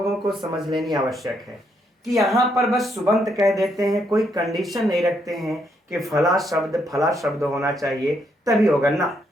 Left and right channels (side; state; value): both; normal; correlation 0.75